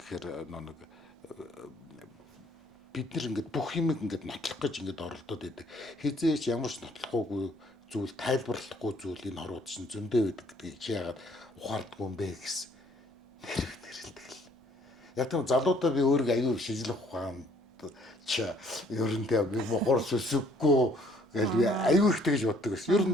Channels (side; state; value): both; normal; correlation 0.62